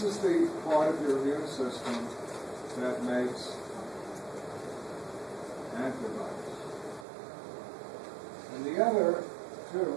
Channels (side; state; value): left; drops out; at 7.1 s